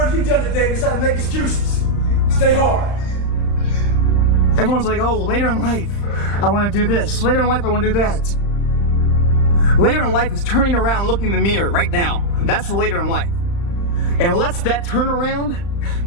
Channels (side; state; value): right; late; 35 ms